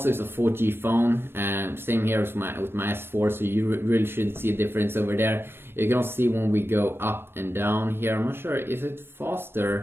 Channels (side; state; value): left; late; 0.11 ms